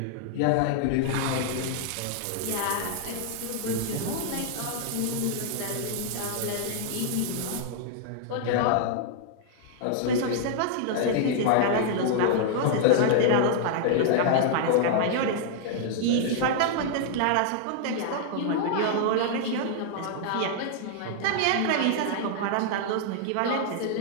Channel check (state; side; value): different; both; correlation -0.01